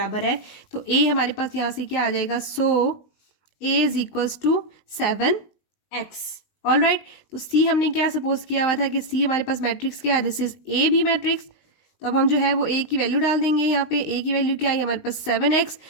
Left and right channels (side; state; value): right; late; 19 ms